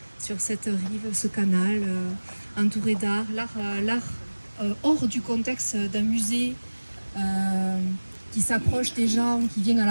sur cette rive, ce canal, entouré d'art, l'art hors du contexte d'un musée, qui s'approche des gens, qui viennent à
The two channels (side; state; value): both; inverted; correlation -1.00